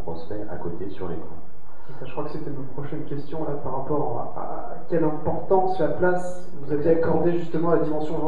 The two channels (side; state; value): both; identical; correlation 1.00